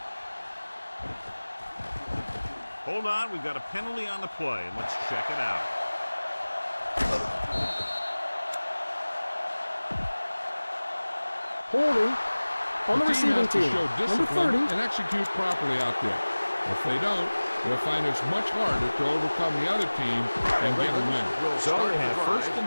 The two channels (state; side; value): inverted; both; correlation -1.00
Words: Hold on, we've got a penalty on the play, and let's check it out. Holding on the receiving has to team. show Number discipline 30. and execute properly out there. If they don't, they'll find it's much harder to overcome the other team and get a win. Will So start they the have drive first